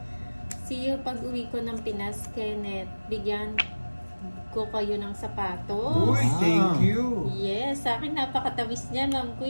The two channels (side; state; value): both; inverted; correlation -1.00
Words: See you pag uwi ko ng Pinas, Kenneth. Bigyan ko kayo ng sapatos. Uy, thank you. Yes, sa akin napakatawis niya, Ma'am